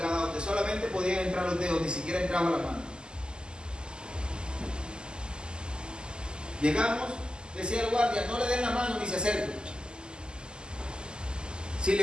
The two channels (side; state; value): left; late; 0.047 ms